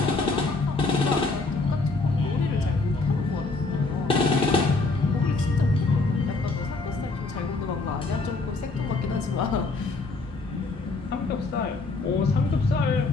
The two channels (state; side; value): quieter; right; 3.6 dB